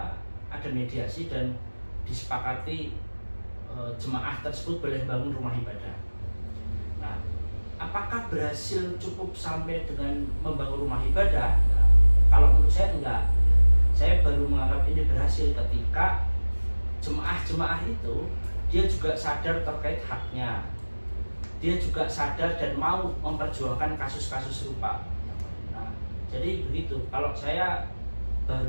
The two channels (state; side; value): inverted; both; correlation -1.00